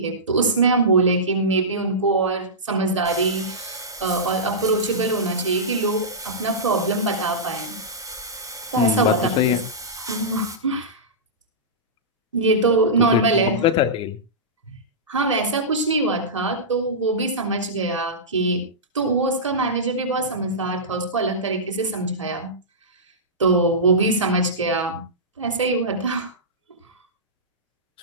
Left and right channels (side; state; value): both; normal; correlation -0.16